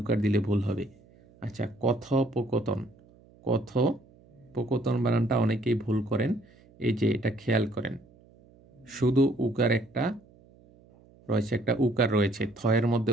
দিলে ভুল হবে। আচ্ছা, কথোপকথন, কথোপকথন বানানটা অনেকেই ভুল করেন, এই যে এটা খেয়াল করেন, শুধু উকার একটা রয়েছে, একটা উকার রয়েছে, থয়ের মধ্যে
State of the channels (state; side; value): noise; right; hum, 27 dB below the sound